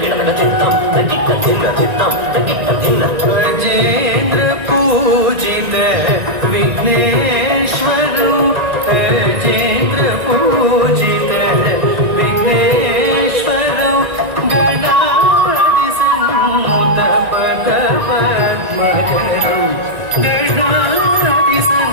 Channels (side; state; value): left; late; 1.9 ms